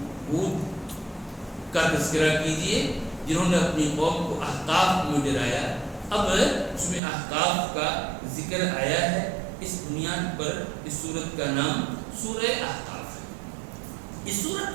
ہود کا تذکرہ کیجئے جنہوں نے اپنی قوم کو احقاف میں ڈرایا۔ اب اس میں احقاف کا ذکر آیا ہے، اس بنیاد پر اس سورت کا نام سورہ احقاف ہے۔ اس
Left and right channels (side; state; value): left; drops out; at 7.0 s